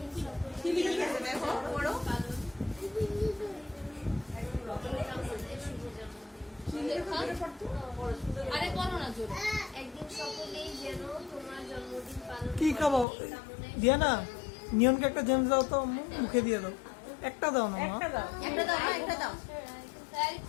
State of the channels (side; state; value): right; drops out; at 13.1 s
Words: খিলিকেতে দেখো বড় আরে করো না জোরে একদিন সকলেই যেন তোমার জন্মদিন পালন কি খাবো দিয়া না নিয়নকে একটা জেমস দাও তো আম্মু, মুখে দিয়ে দাও। একটা দাও না মা। একটা দাও একটা দাও না একটা দাও তাই